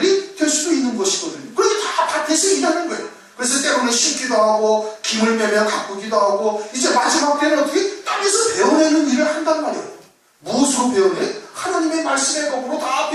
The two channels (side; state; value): both; identical; correlation 1.00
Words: 될 수도 있는 것이거든요. 그렇게 다 밭에서 일하는 거예요. 그래서 때로는 심기도 하고 김을 매며 가꾸기도 하고, 이제 마지막 때는 어떻게? 땅에서 베어내는 일을 한단 말이에요. 무엇으로 베어내? 하나님의 말씀의 법으로 다